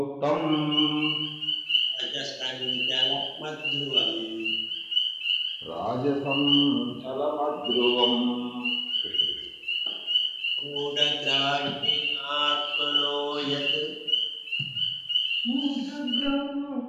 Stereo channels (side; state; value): both; identical; correlation 1.00